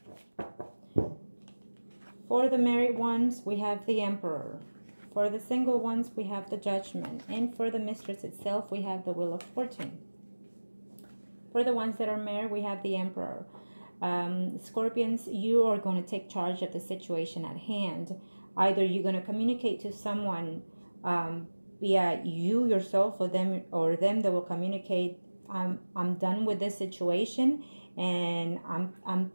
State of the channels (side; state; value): both; inverted; correlation -1.00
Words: For the married ones, we have the Emperor. For the single ones, we have the Judgment. And for the mistress itself, we have the Wheel of Fortune. For the ones that are married, we have the Emperor. Scorpions, you are going to take charge of the situation at hand. Either you're going to communicate to someone via you yourself or them that will communicate, I'm done with this situation and I'm